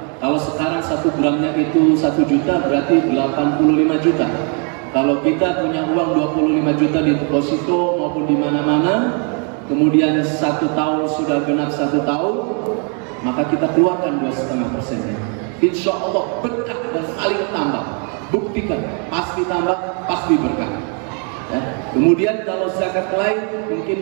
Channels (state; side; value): quieter; left; 38.9 dB